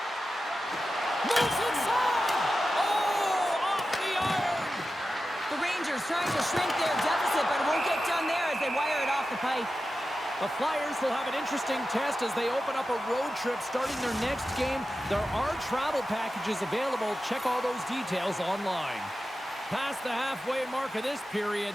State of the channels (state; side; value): normal; both; correlation 0.92